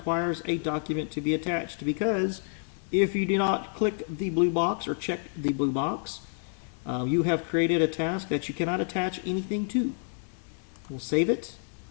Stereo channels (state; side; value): silent; right; 59 dB below the other